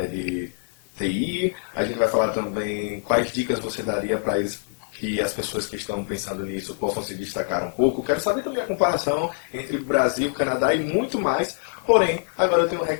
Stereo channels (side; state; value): right; silent; digital silence